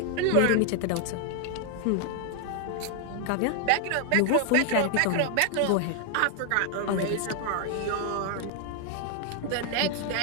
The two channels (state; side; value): different; both; correlation 0.00